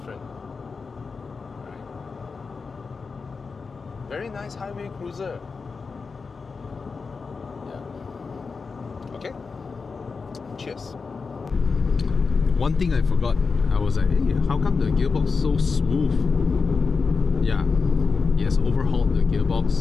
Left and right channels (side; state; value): right; quieter; 4.8 dB